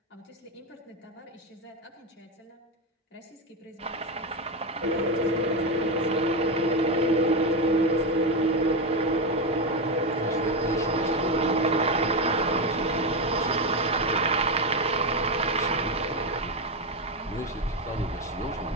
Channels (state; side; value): normal; both; correlation 0.11